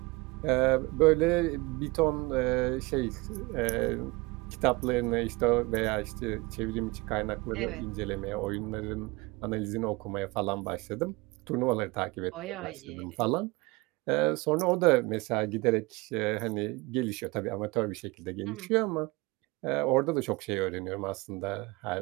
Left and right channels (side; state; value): left; quieter; 24.3 dB